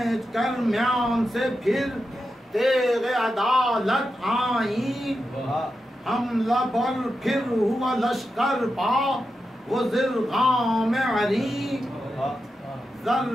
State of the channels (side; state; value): both; normal; correlation 0.89